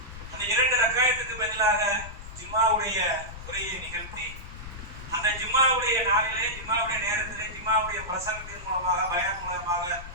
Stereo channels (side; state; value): left; noise; rumble, 13 dB below the sound